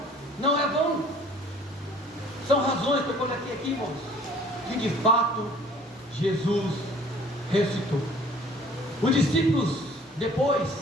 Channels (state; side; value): normal; both; correlation 0.53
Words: não é vão. São razões que eu coloquei aqui, irmãos, que de fato Jesus ressuscitou. Os discípulos depois,